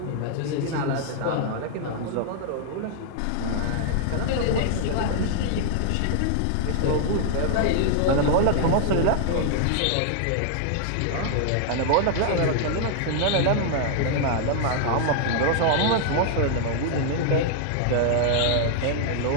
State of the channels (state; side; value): different; both; correlation 0.00